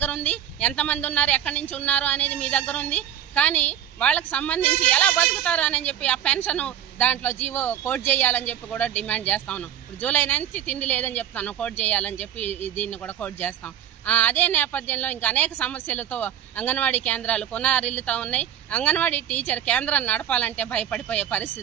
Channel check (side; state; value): left; quieter; 10.4 dB